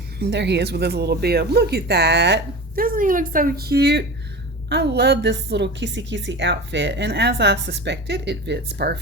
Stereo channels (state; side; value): normal; both; correlation 0.32